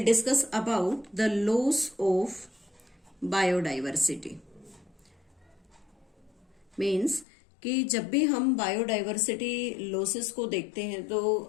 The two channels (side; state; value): right; drops out; at 7.2 s